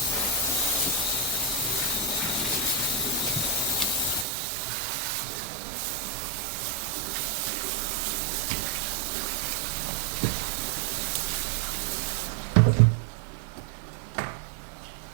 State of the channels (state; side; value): drops out; left; at 4.2 s